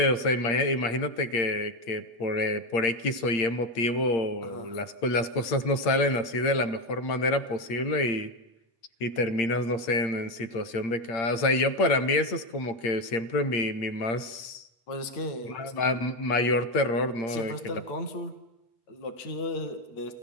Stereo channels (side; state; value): right; late; 8.7 ms